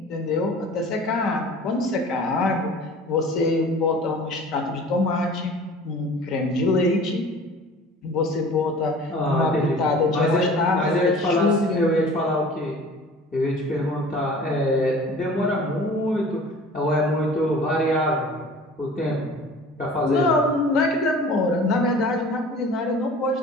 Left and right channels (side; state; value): both; normal; correlation 0.44